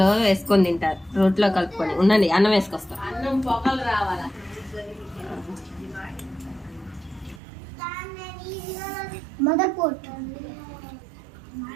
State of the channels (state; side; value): drops out; left; at 7.4 s